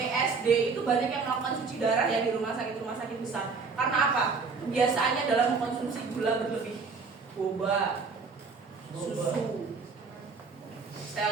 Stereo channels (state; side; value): quieter; left; 4.8 dB